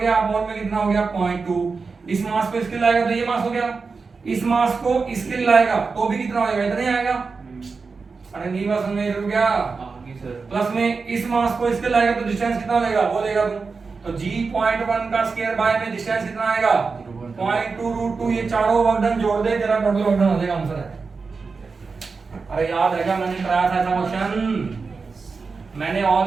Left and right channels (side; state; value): left; quieter; 4.6 dB